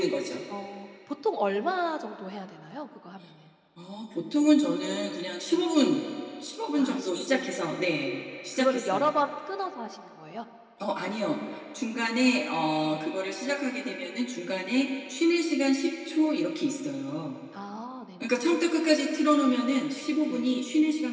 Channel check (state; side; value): identical; both; correlation 1.00